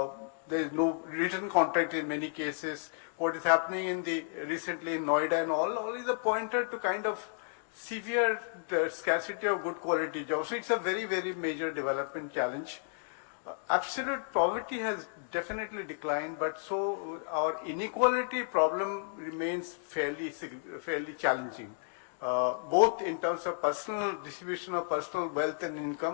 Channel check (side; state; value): right; silent; digital silence